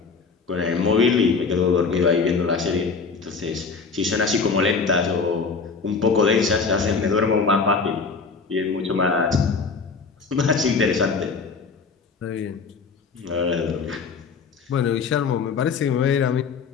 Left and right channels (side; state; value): right; quieter; 4.9 dB